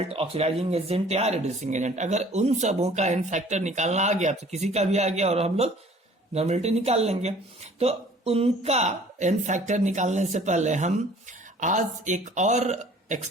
oxidizing agent या रिड्यूसिंग एजेंट। अगर उन सबों का एन फैक्टर निकालना आ गया तो किसी का भी आ गया और हम लोग नॉर्मेलिटी निकाल लेंगे। तो उनका एन फैक्टर निकालने से पहले हम आज एक और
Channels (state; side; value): normal; both; correlation 0.52